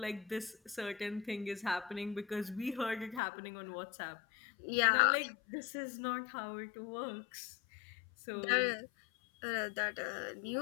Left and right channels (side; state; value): right; drops out; at 3.2 s